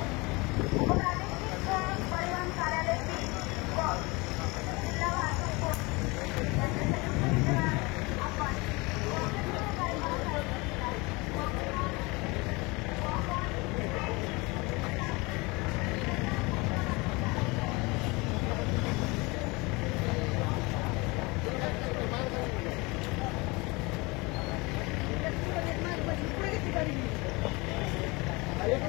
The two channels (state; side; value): quieter; right; 25.4 dB